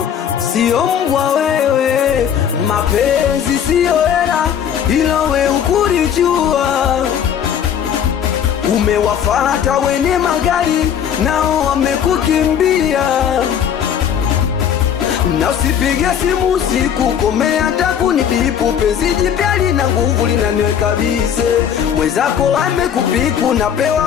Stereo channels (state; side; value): quieter; right; 8.6 dB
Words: sio mbwa wewe. Mapenzi sio hela, ilo we ukurijua. Umewafata wene magari, nao wamekukimbia. Na usipige simu usiku, komea hata kunibipu. Penzi jipya lina nguvu linaniweka bize. Mwenzako amekupiku,